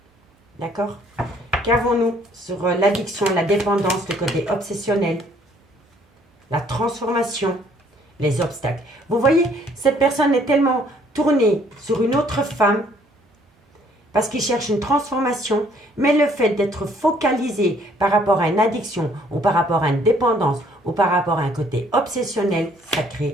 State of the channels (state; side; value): normal; both; correlation 0.62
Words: D'accord? Qu'avons-nous sur l'addiction, la dépendance, le côté obsessionnel, la transformation, les obstacles. Vous voyez, cette personne est tellement tournée sur une autre femme parce qu'il cherche une transformation, mais le fait d'être focalisé par rapport à une addiction ou par rapport à une dépendance ou par rapport à un côté obsessionnel, ça